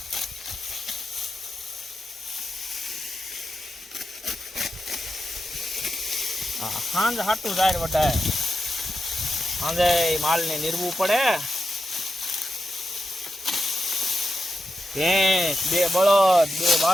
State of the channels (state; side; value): normal; both; correlation 0.88